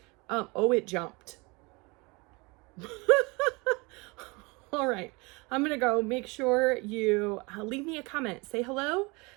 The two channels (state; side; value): quieter; left; 27.0 dB